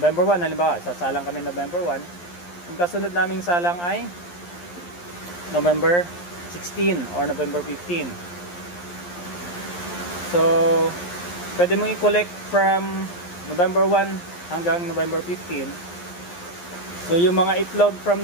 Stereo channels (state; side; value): late; right; 11 ms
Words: 1, halimbawa sasalang kami November 1, ang kasunod naming salang ay November 16 or November 15. So pwede mong i-collect from November 1 hanggang November 15. So yung mga itlog from